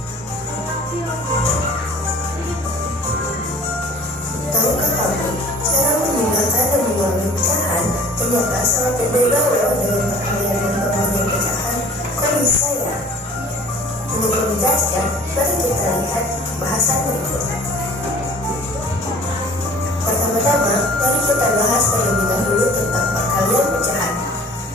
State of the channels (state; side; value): normal; both; correlation 0.48